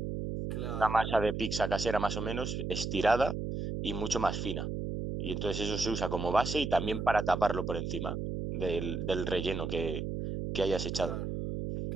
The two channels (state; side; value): noise; right; hum, 3 dB below the sound